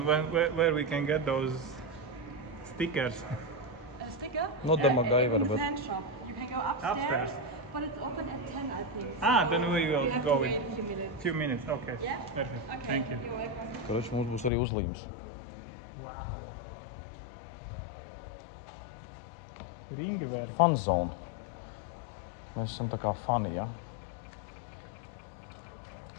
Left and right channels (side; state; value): right; drops out; at 14.5 s